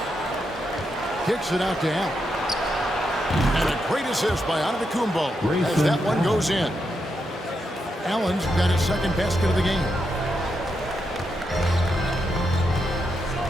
Kicks it out to Allen. And a great assist by Antetokounmpo as that one goes in. Allen's got his second basket of the game.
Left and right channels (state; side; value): normal; both; correlation 0.83